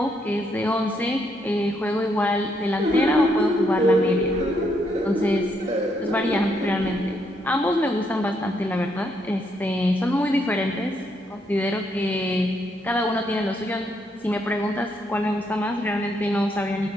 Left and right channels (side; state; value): both; normal; correlation 0.75